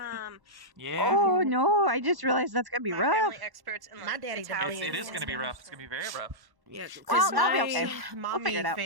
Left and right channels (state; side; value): late; left; 1.1 ms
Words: Yeah, Oh no, I just realized that's gonna be My rough. family experts in, My like, daddy Italian it is and gonna be rough. stuff. It's gonna be very rough. Yeah, Well, because I'll be okay. my We'll figure it mommy out.